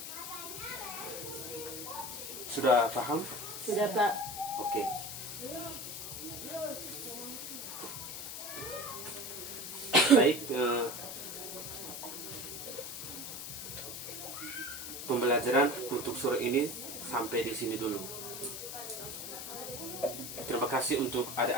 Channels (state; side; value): noise; left; hiss, 7 dB below the sound